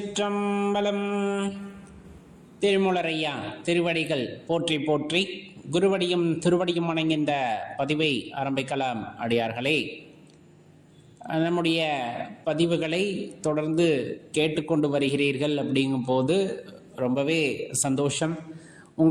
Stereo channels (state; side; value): identical; both; correlation 1.00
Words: திருமூலரையா திருவடிகள் போற்றி போற்றி, குருவடியும் திருவடியும் வணங்கின்ற பதிவை ஆரம்பிக்கலாம். அடியார்களே, நம்முடைய பதிவுகளை தொடர்ந்து கேட்டுக்கொண்டு வருகிறீர்கள். அப்படிங்கும் போது ரொம்பவே சந்தோஷம்.